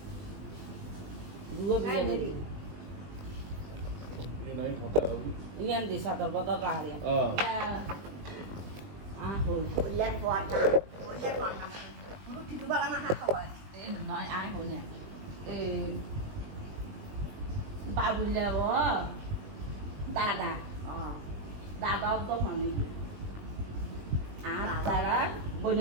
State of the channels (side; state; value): left; late; 20 ms